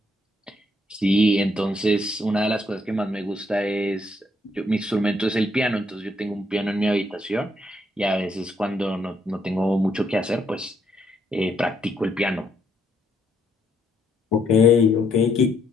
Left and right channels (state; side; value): normal; both; correlation 0.72